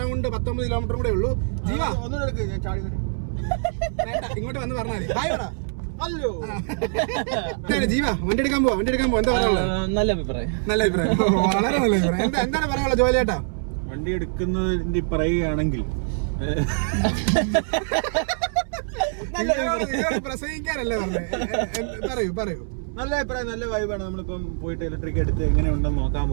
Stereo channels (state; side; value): silent; left; 63 dB below the other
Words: 19 കിലോമീറ്റർ കൂടെ ഉള്ളൂ. ജീവ ഇങ്ങോട്ട് വന്ന് പറഞ്ഞാൽ ഹായ് പറ. ജീവ വണ്ടി എടുക്കാൻ പോവാ. എന്താ പറയാനുള്ളത്? നല്ല അഭിപ്രായം. വളരെ നല്ല അഭിപ്രായം. എന്താണ് പറയാനുള്ളത് ജോയൽ ചേട്ടാ? വണ്ടി എടുക്കുന്നതിന്റെ പറയുകയാണെങ്കിൽ പ്രസംഗിക്കാനല്ലേ പറഞ്ഞത്? പറയൂ. നല്ല അഭിപ്രായം, നല്ല വൈബാണ്. നമ്മളിപ്പം പോയിട്ട് ഇലക്ട്രിക് എടുത്ത് എങ്ങനെ ഉണ്ടെന്ന് നോക്കാൻ